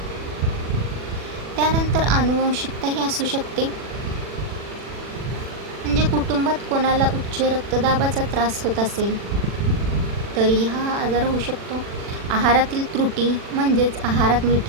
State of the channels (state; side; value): late; left; 40 ms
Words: त्यानंतर आनुवंशिकताही असू शकते. म्हणजे कुटुंबात कोणाला उच्च रक्तदाबाचा त्रास होत असेल तरी हा आजार होऊ शकतो. आहारातील त्रुटी म्हणजेच आहारात